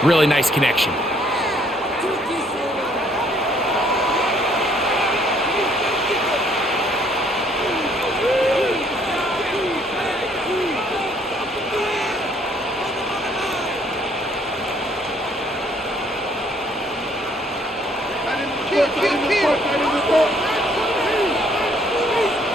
really nice connection.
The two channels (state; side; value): normal; both; correlation 0.64